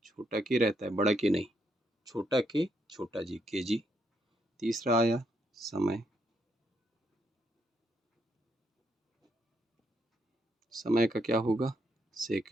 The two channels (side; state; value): both; normal; correlation 0.76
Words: छोटा के रहता है, बड़ा के नहीं, छोटा के छोटा जी, केजी। तीसरा आया समय, समय का क्या होगा?